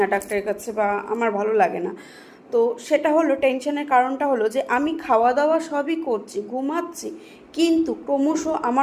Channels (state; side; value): identical; both; correlation 1.00